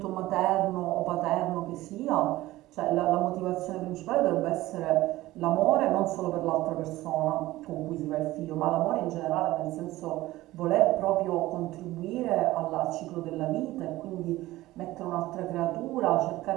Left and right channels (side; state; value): left; quieter; 17.2 dB